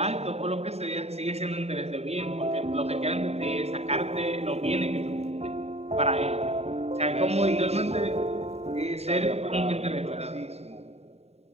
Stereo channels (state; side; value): late; left; 0.30 ms